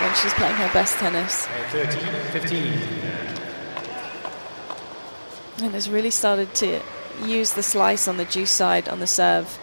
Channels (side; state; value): both; inverted; correlation -1.00